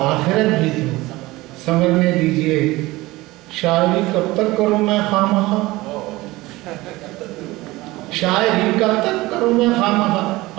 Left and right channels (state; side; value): quieter; left; 19.8 dB